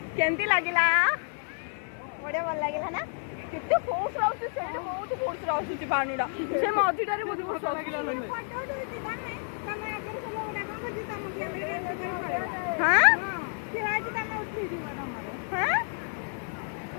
केमती लागला बड़े भल लागला ना केते फोर्स आउस से बहुत फोर्स आउस पानीडा से मझीटारे बहुत फोर्स लागला फोटो उठौची तमे तमे आगे से लोग डाका को जी तम के भी एंड कर पड़ेला हां फिर आज तमे उठी जीवा हमर हां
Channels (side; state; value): right; silent; 56 dB below the other